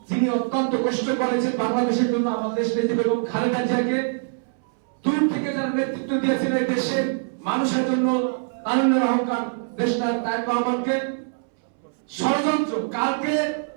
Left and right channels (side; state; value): left; silent; 63 dB below the other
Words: যিনি অত্যন্ত কষ্ট করেছেন বাংলাদেশের জন্য, আমাদের দেশ নেত্রী বেগম খালেদা জিয়াকে দূর থেকে যারা নেতৃত্ব দিয়েছেন এই দেশের মানুষের জন্য, তারুণ্যের অহংকার দেশটা তারেক রহমানকে ষড়যন্ত্র। কালকে